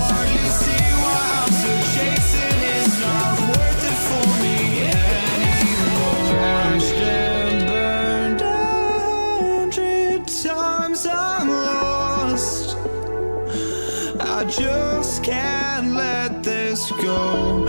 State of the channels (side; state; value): both; inverted; correlation -1.00